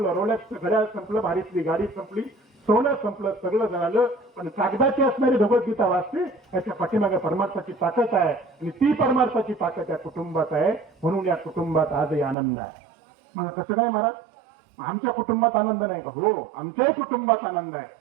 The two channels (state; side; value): drops out; left; at 12.4 s